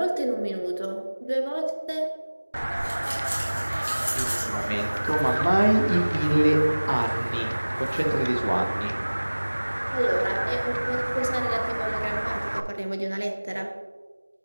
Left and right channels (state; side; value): inverted; both; correlation -1.00